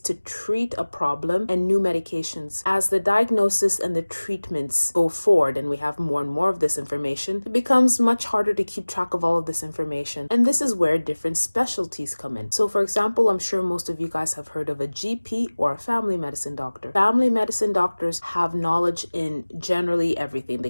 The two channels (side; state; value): both; inverted; correlation -1.00